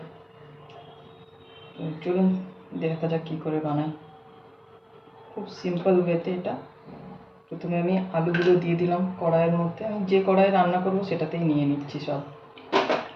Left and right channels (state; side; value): identical; both; correlation 1.00